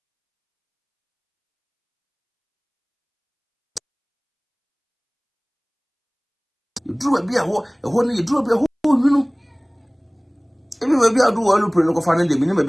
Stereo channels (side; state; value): both; identical; correlation 1.00